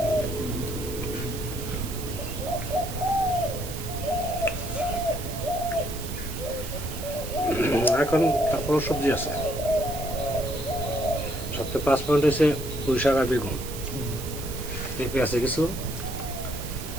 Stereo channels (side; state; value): right; noise; hiss, 11 dB below the sound